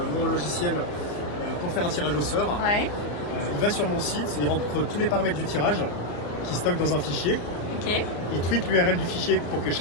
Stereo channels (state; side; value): late; right; 34 ms